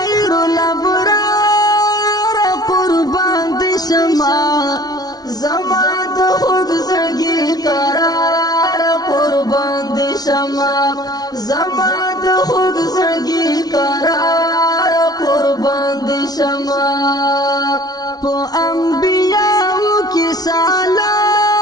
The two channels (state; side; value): late; right; 0.19 ms